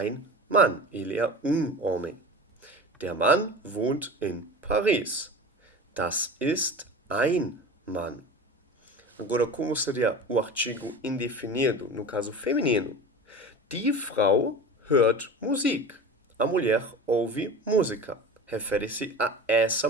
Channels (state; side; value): normal; both; correlation 0.33